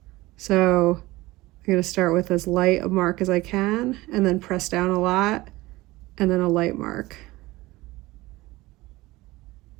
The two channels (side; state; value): left; quieter; 19.7 dB